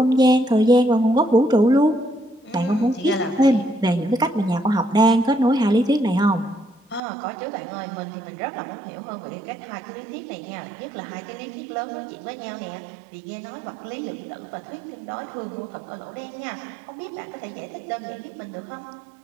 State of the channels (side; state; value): left; drops out; at 7.0 s